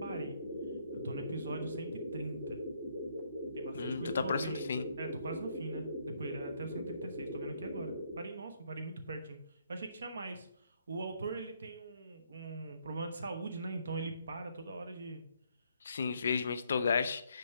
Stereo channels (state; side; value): inverted; both; correlation -0.71